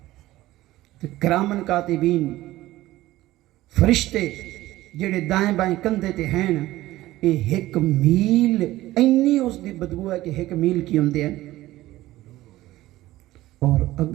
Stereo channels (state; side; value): quieter; left; 16.4 dB